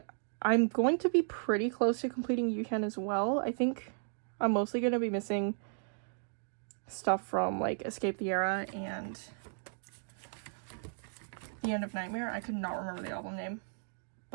I'm going to be pretty close to completing Yuhyun as well. I think I'm mostly going to be missing stuff from like Escape the Era and The End of Nightmare. I could not remember the album name.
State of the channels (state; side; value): silent; left; digital silence